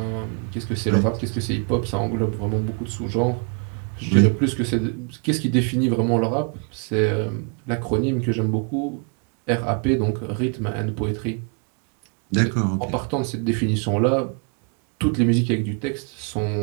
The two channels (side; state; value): left; quieter; 39.4 dB